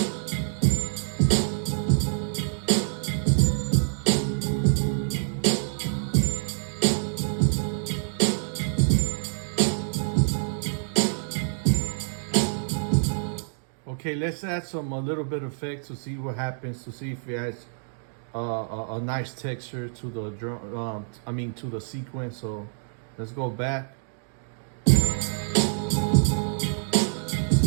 Okay, let's add a little bit of effect to see what happens, to see if it adds a nice texture to the drum. To the sequence. So let's go back. Let's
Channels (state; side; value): silent; left; digital silence